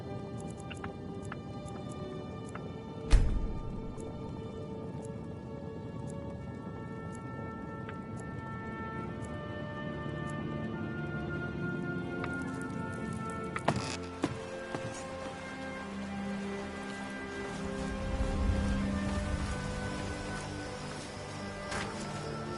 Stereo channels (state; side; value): identical; both; correlation 1.00